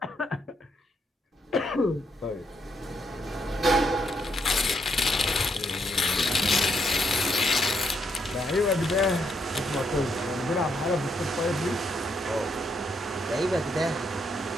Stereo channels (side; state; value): both; normal; correlation 0.76